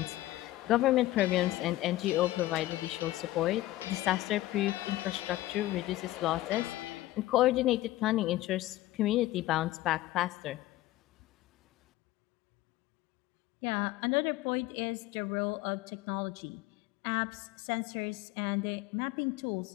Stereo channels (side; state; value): right; quieter; 16.3 dB